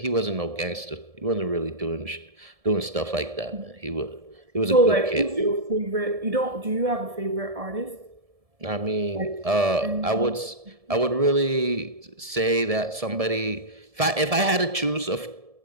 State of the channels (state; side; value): late; left; 1.7 ms